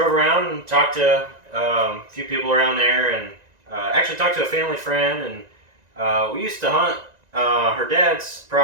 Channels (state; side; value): late; left; 1.9 ms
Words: around and talked to a few people around there, and actually talked to a family friend, and we used to hunt her dad's